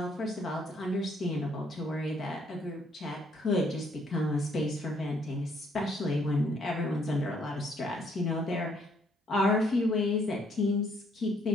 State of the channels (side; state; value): both; normal; correlation 0.68